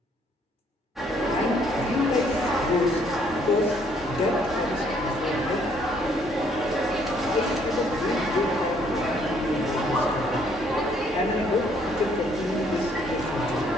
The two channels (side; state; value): both; normal; correlation 0.65